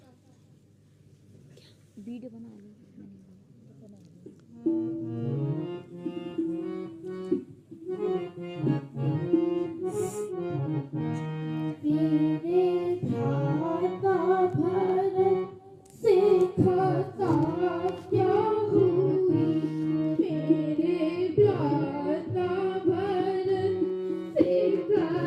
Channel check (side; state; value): both; identical; correlation 1.00